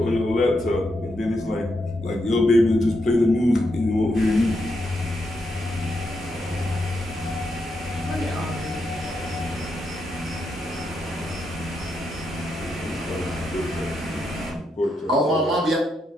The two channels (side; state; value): both; normal; correlation 0.82